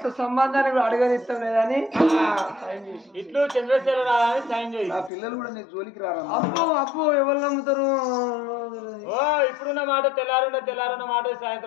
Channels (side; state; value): right; drops out; at 5.1 s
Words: సంబంధాన్ని కూడా అడగనిస్తాం లేదని ఇట్లు చంద్రశేఖర రాదని సైన్ చేయి. నా పిల్లలు కూడా నీ జోలికి రారా. అప్పు అప్పు ఎవరు నమ్ముతారు? ఓ ఇప్పుడున్న మాట తెల్లారున్న మాట